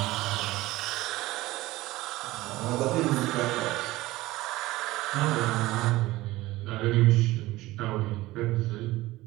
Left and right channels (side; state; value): left; quieter; 18.2 dB